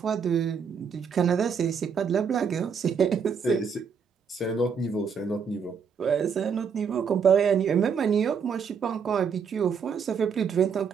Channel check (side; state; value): left; quieter; 6.4 dB